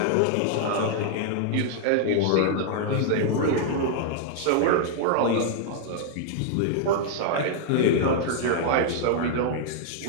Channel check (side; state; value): both; different; correlation -0.01